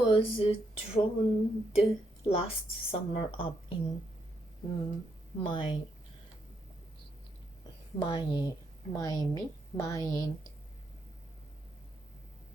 drowned last summer up in Miami,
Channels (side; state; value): both; normal; correlation 0.78